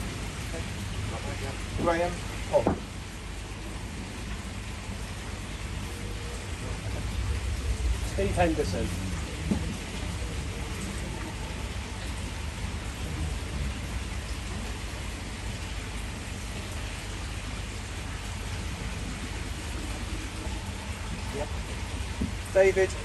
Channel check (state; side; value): identical; both; correlation 1.00